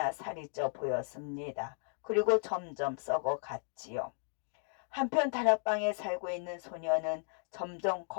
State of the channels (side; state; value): right; silent; 54 dB below the other